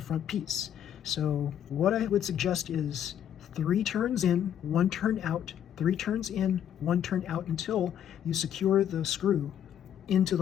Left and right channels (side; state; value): right; quieter; 9.8 dB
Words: front piece. So what I would suggest is 3 turns in, 1 turn out, 3 turns in, 1 turn out, until you secure the screw into